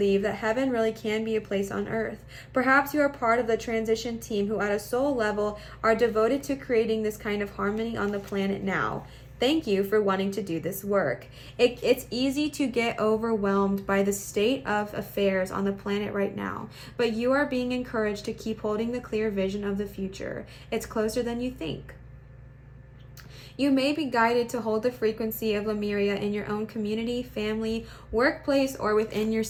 that heaven really can be a place on earth. Perhaps you are part of the transition team who at a soul level are devoted to creating this kind of harmony on the planet now. Thank you for wanting to do this work. It's easy to get overwhelmed by the state of affairs on the planet right now, but you are being encouraged to keep holding the clear vision of the future. It's closer than you think. You may be guided to hold the frequency of Lemuria in your own community, family, workplace, or within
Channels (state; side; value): identical; both; correlation 1.00